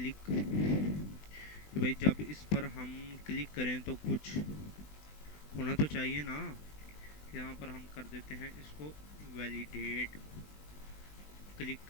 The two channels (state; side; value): late; right; 20 ms